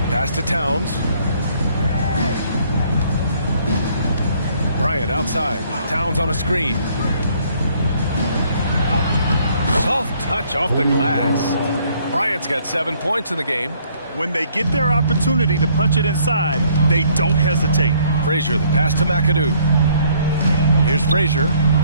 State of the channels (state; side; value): inverted; both; correlation -0.63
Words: Pass to Towns. Bryant outside. Towns on a screen. Soft touch off the glass. Bryant's got 7 points in the game. When they get their opportunity to punch it inside, they don't hesitate. Frazier, the pass to McAdoo. Here's Frazier.